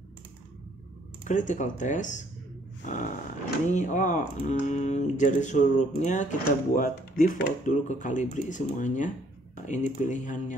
Critical test. Ini jari hurufnya kita buat default dulu ke Calibri semuanya. Ini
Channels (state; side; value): normal; both; correlation 0.64